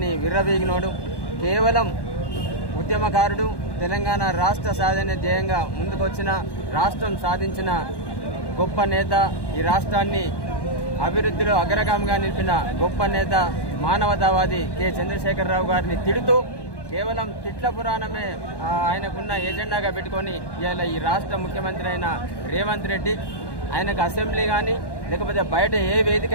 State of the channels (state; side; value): late; right; 1.1 ms